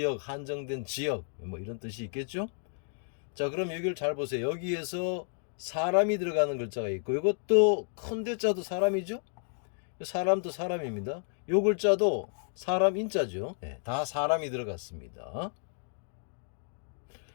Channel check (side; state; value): right; silent; digital silence